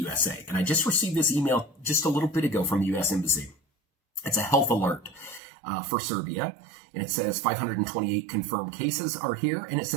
And I just received this email just a little bit ago from the U.S. Embassy. It's a health alert for Serbia. And it says 528 confirmed cases are here. And it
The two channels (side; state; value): left; drops out; at 5.4 s